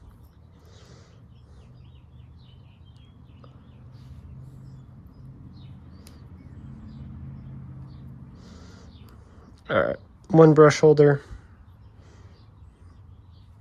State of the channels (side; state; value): both; identical; correlation 1.00